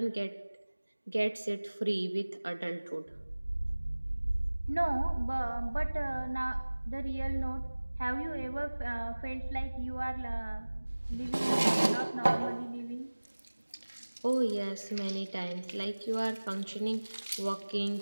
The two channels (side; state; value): both; inverted; correlation -1.00